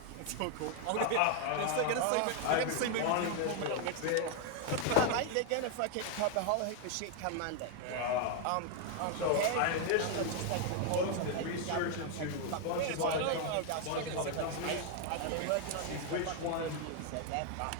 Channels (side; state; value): both; different; correlation 0.01